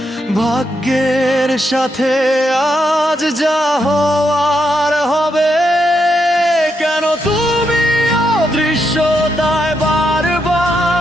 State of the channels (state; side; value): normal; both; correlation 0.81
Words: ভাগ্যের সাথে আজ যা হওয়ার হবে। কেন তুমি অদৃশ্যতায় বারবার,